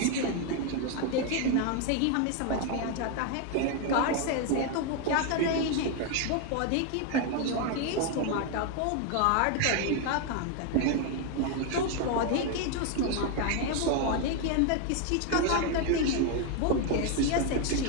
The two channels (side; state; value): both; different; correlation 0.01